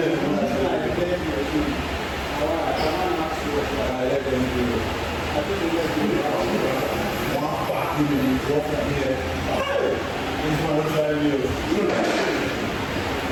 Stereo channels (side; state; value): both; identical; correlation 1.00